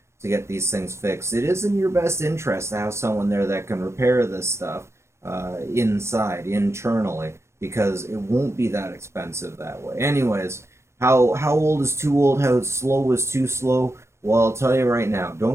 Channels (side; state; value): left; late; 0.13 ms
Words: to get these things fixed, it is in your best interest to have someone there that can repair this stuff internally, because it won't be that expensive that way. Anyways, how old is too old? How slow is too slow? Well, I'll tell you right now,